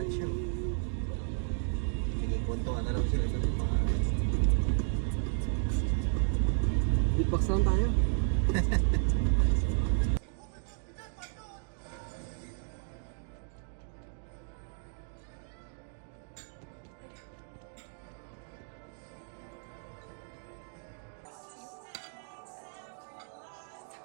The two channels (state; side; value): silent; left; 56 dB below the other